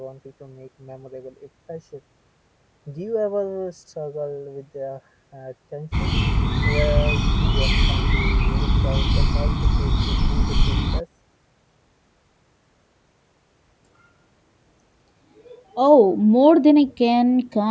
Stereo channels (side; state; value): both; identical; correlation 1.00